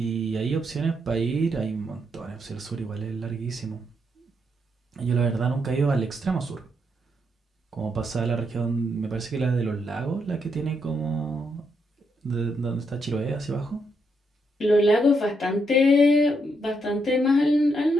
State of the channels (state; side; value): normal; both; correlation 0.78